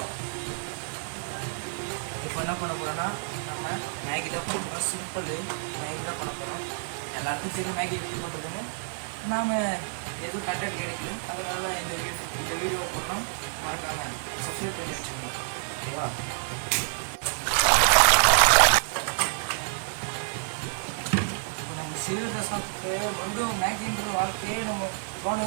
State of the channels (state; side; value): silent; left; 59 dB below the other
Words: இப்போ என்ன பண்ண போகிறோன்னா நம்ம மேகி தான் பண்ண போகிறோம். சிம்பிள் மேகி தான் பண்ண போகிறோம். எல்லாருக்கும் தெரியும் மேகி எப்படி பண்ணுறதுன்னு. நாம் எதுவும் கண்டென்ட் கிடைக்கல, அதனால இந்த வீடியோ போடுறோம். மறக்காமல் சப்ஸ்கிரைப் பண்ணி வச்சுக்கோங்க. ஓகேவா? இப்போ நம்ம சீரியஸாக சாப்பிட்டு மறுபடியும் மேகின்ற வாழ்க்கையே நம்ம